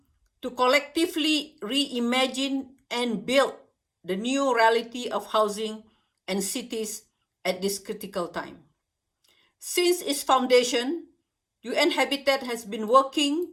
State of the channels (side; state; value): both; identical; correlation 1.00